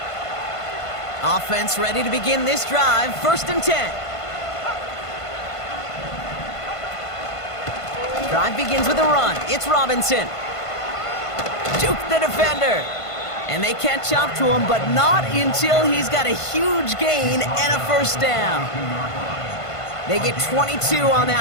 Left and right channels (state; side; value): late; right; 1.5 ms